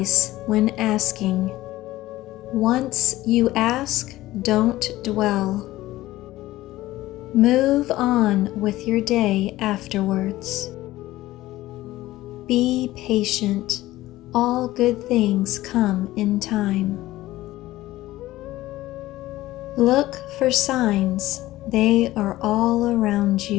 when asking. Once you ask, don't dwell. Move on with your day afterwards. Be patient. All good things come in time. Look for signs. They are all around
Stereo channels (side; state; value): right; quieter; 16.5 dB